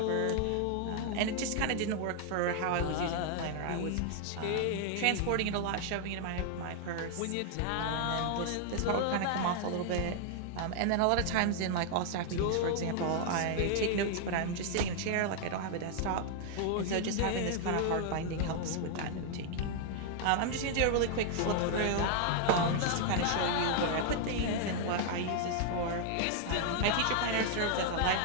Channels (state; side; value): different; both; correlation 0.00